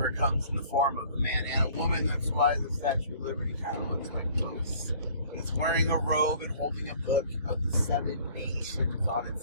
comes in the form of a man and a woman. That's why the Statue of Liberty kind of looks like both. It's wearing a robe and holding a book of the 7 nations on its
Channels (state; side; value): inverted; both; correlation -0.53